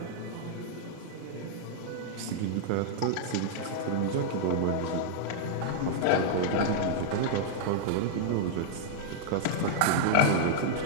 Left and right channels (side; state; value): both; different; correlation -0.01